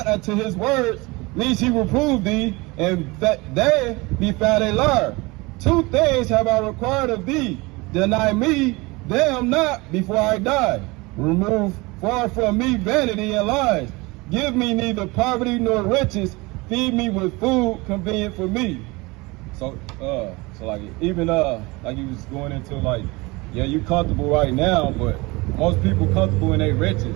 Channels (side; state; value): left; quieter; 24.1 dB